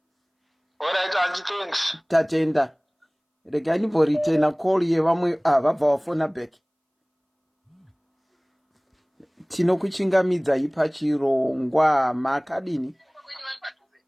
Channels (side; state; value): both; identical; correlation 1.00